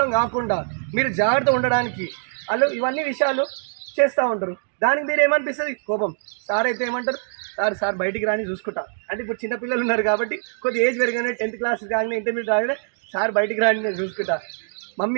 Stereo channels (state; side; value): silent; left; digital silence